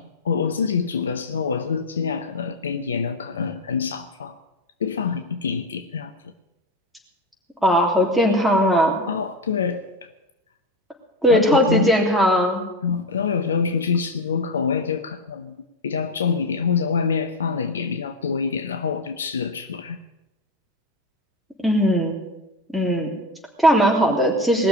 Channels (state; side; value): normal; both; correlation 0.18